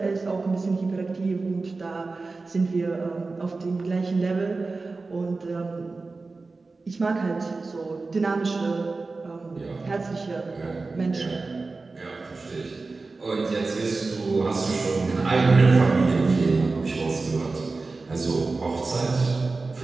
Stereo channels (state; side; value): quieter; left; 3.8 dB